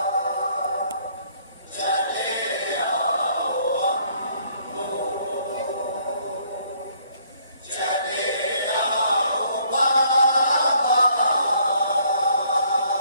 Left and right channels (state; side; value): inverted; both; correlation -0.64